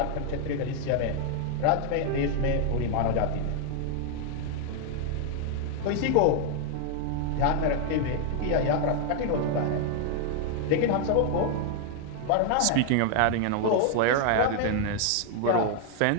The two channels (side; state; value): both; different; correlation 0.00